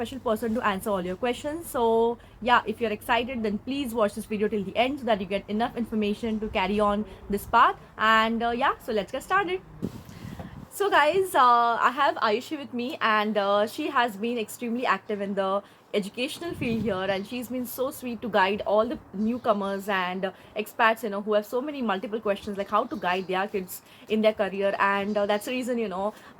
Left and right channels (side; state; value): both; identical; correlation 1.00